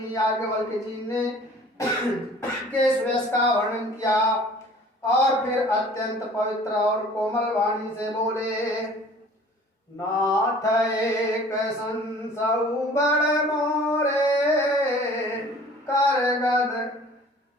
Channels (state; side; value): normal; both; correlation 0.49